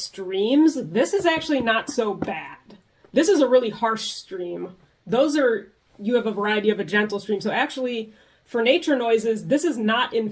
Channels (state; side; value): identical; both; correlation 1.00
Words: this is actually not so bad. This is a really harsh stream. Those are, you have a variety of a gentle stream. So actually, for nature noises, this is not